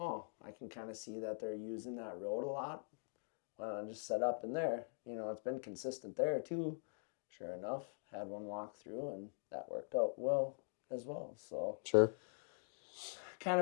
I can kind of see that they're using that road a lot. Why don't I just set up in there? You know, it's been consistent there too. Sure enough, had one walk through and that worked out well as well. So Sure. kind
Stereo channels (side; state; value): right; silent; digital silence